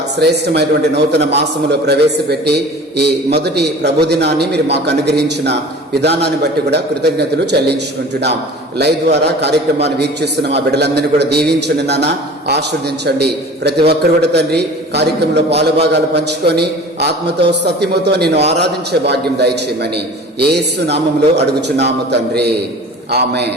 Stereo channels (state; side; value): normal; both; correlation 0.41